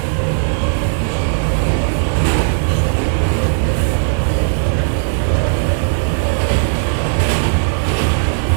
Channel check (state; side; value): silent; left; 59 dB below the other